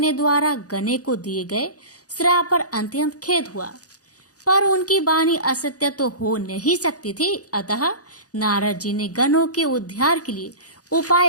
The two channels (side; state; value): right; late; 0.67 ms